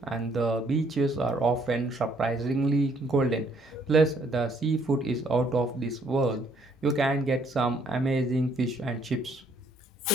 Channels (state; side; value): normal; both; correlation 0.66